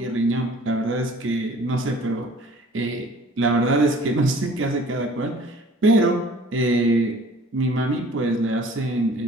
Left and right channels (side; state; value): both; normal; correlation 0.50